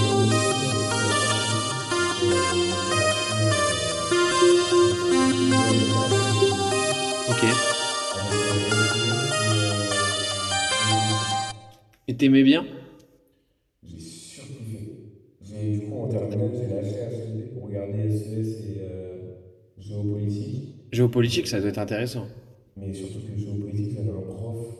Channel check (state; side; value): identical; both; correlation 1.00